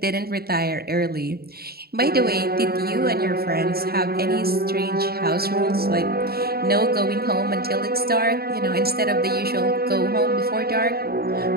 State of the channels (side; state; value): left; late; 0.45 ms